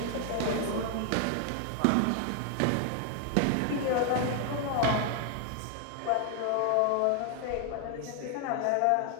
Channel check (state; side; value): different; both; correlation 0.00